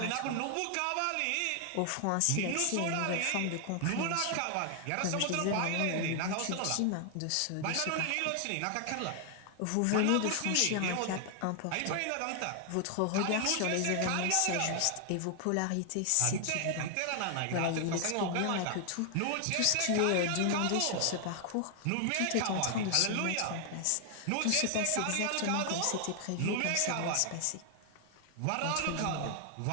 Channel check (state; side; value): different; both; correlation 0.00